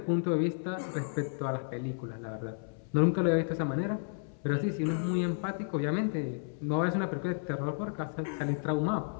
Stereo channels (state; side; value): silent; right; 56 dB below the other